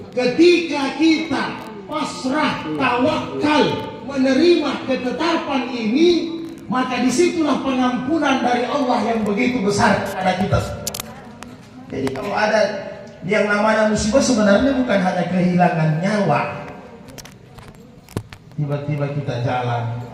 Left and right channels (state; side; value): identical; both; correlation 1.00